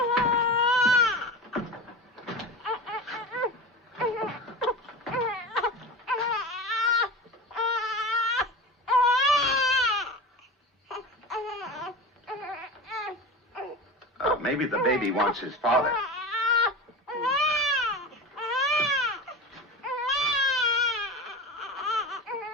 Maybe the baby wants his father.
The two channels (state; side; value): normal; both; correlation 0.28